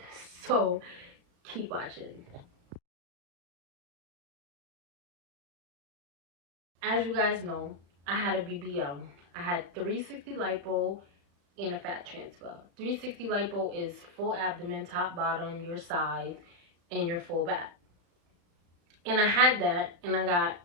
So keep watching. As you guys know, I had a BBL. I had 360 lipo and a fat transfer. 360 lipo is full abdomen, top, bottom, your sides, and your full back. And I had that, and I got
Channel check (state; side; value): late; left; 35 ms